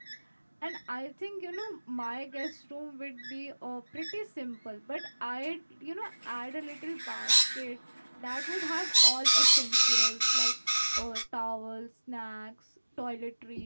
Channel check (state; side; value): inverted; both; correlation -1.00